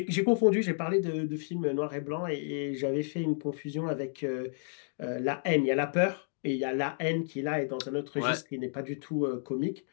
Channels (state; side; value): silent; right; digital silence